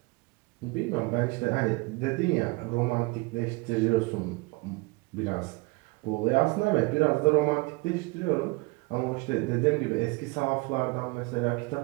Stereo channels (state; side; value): quieter; left; 26.3 dB